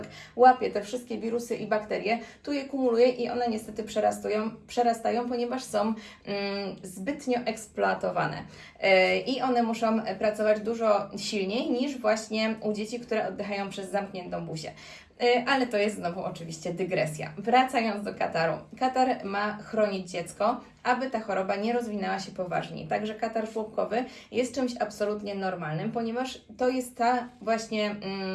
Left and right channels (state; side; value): identical; both; correlation 1.00